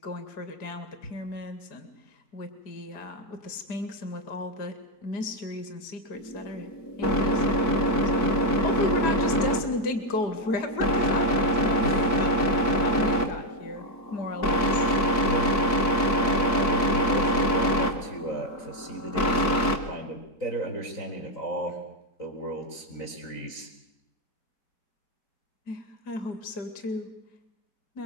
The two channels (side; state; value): right; late; 4.6 ms